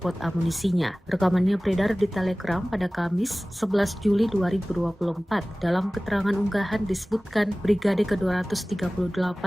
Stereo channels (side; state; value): both; normal; correlation 0.98